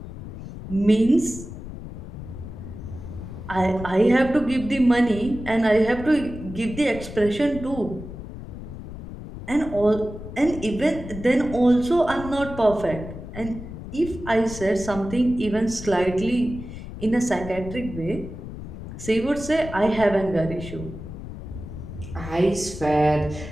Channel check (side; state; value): left; noise; rumble, 11 dB below the sound